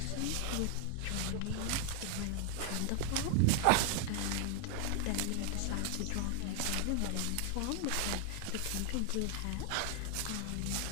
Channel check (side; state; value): both; different; correlation 0.00